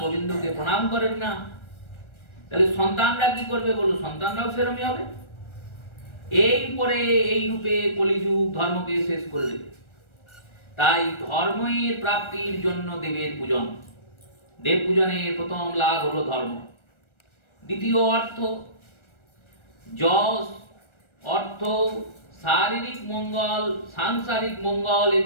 গোবিন্দকে প্রণাম করেন না, তাহলে সন্তানরা কি করবে? বলো, সন্তানরাও সেরকমই হবে। এই পরে এই রূপে কলিযুগ ধর্মকে শেষ করে দেবে। তাই ধর্মের প্রাপ্তির জন্য দেবের পূজন। দেব পূজনের প্রথম লাভ হলো ধর্ম। দ্বিতীয় অর্থ, যশ, অর্থ, শারীরিক মঙ্গল, সাংসারিক মঙ্গল,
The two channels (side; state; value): right; late; 1.3 ms